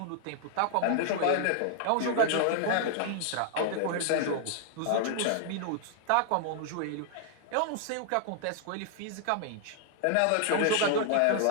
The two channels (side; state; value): both; different; correlation 0.00